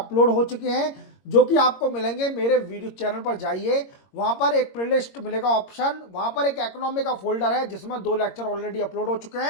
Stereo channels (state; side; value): late; right; 22 ms